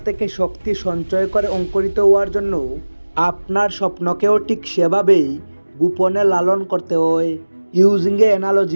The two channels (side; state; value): both; inverted; correlation -1.00